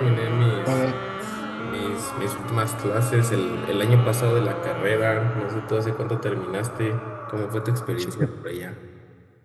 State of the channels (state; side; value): identical; both; correlation 1.00